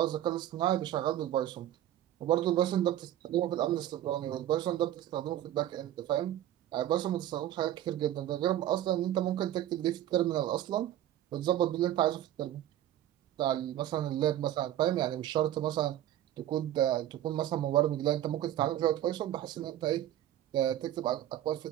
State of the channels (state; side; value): quieter; left; 12.4 dB